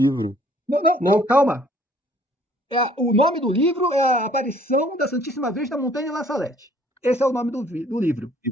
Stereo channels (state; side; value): normal; both; correlation 0.59